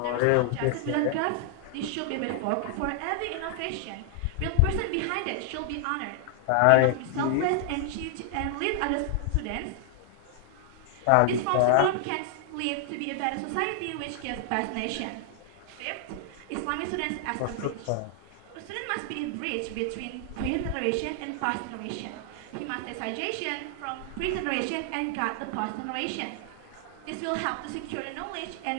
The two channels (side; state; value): both; different; correlation -0.01